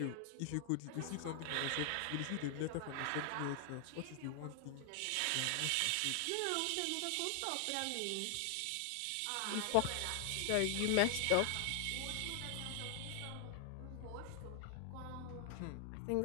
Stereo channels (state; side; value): different; both; correlation 0.00